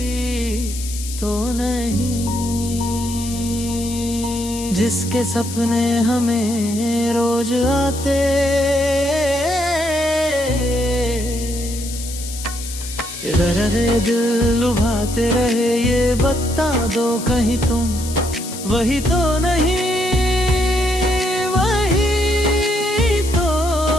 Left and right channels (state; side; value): noise; left; hiss, 10 dB below the sound